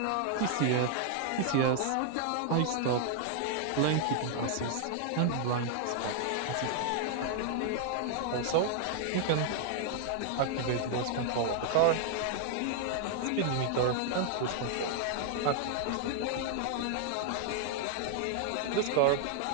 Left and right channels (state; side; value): different; both; correlation 0.00